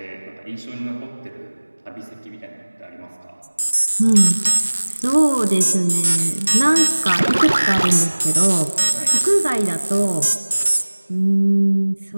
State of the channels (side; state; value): both; inverted; correlation -1.00